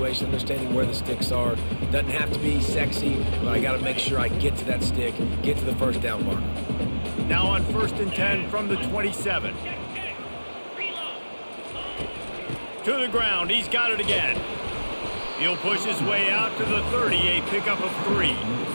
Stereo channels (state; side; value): inverted; both; correlation -1.00